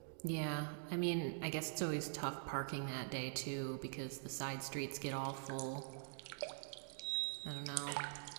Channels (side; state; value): left; silent; digital silence